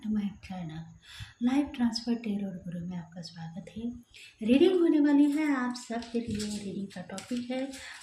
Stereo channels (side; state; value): both; identical; correlation 1.00